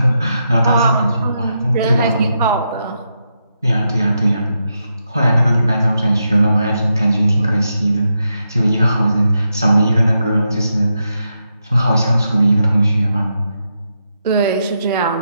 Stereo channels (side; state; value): both; inverted; correlation -0.84